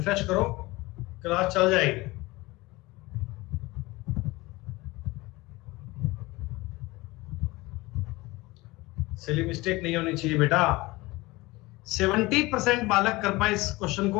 करो, क्लास चल जाएगी। सिली मिस्टेक नहीं होनी चाहिए बेटा। 70% बालक कर पाए इस क्वेश्चन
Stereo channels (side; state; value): right; quieter; 21.3 dB